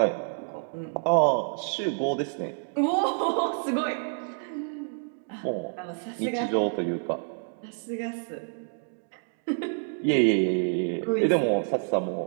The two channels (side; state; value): left; silent; digital silence